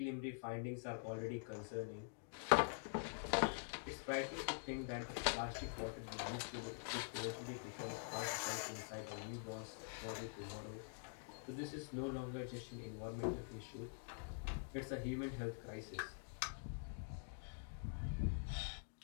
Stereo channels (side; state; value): right; silent; digital silence